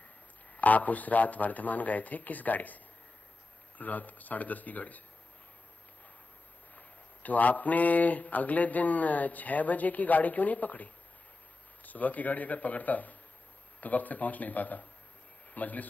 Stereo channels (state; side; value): quieter; right; 3.4 dB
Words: आप उस रात वर्धमान गए थे, किस गाड़ी से? रात 10:30 की गाड़ी से। तो आपने अगले दिन 6 बजे की गाड़ी क्यों नहीं पकड़ी? सुबह की गाड़ी अगर पकड़ता तो वक्त से पहुंच नहीं पाता। मजलिस